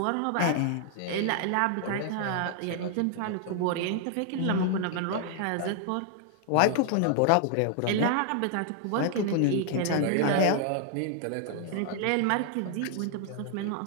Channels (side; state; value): both; different; correlation 0.00